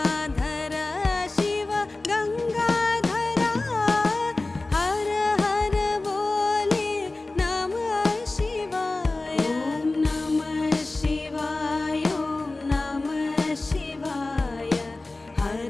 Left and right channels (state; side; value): quieter; right; 3.1 dB